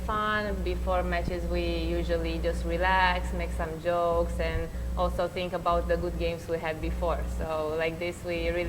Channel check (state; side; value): identical; both; correlation 1.00